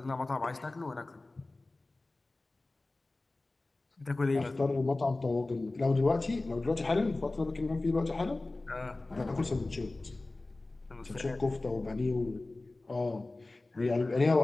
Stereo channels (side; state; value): right; quieter; 3.0 dB